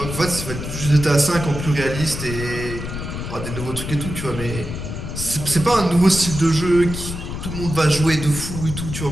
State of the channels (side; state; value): left; noise; rumble, 7 dB below the sound